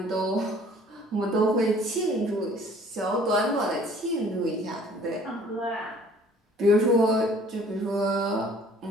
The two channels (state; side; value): normal; both; correlation 0.54